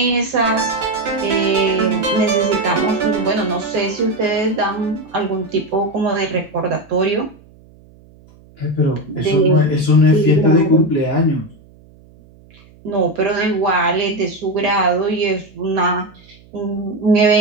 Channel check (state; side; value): noise; right; hum, 26 dB below the sound